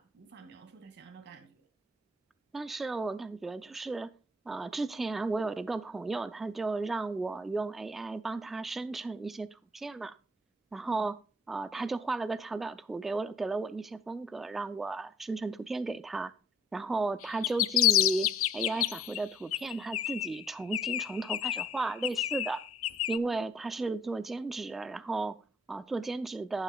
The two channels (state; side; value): normal; both; correlation 0.58